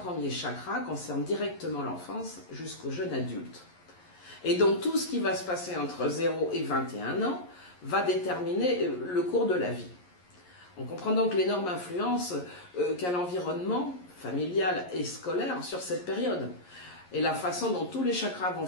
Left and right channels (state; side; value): late; right; 11 ms